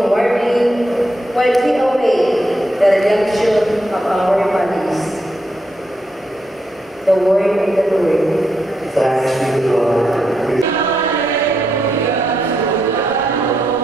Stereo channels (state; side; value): normal; both; correlation 0.81